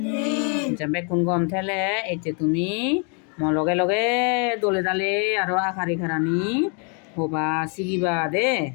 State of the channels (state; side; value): quieter; right; 37.8 dB